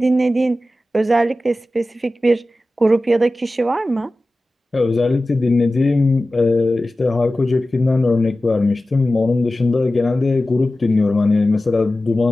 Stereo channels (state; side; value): normal; both; correlation 0.95